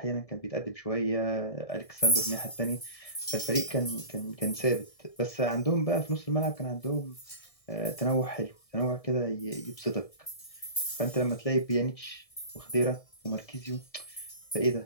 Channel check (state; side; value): late; right; 1.7 ms